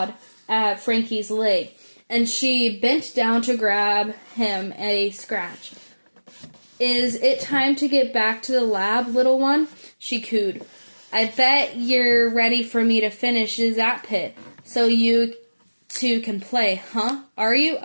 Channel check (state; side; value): inverted; both; correlation -1.00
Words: at Frankie's leg, and she bent down to grab him a scratch. Is it time to get back to the lab, little one? She cooed. I bet you're ready for me to finish that pit, so you two can play, huh? Are you?